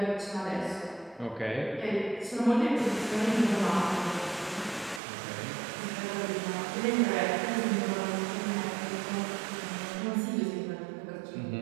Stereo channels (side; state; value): left; drops out; at 5.0 s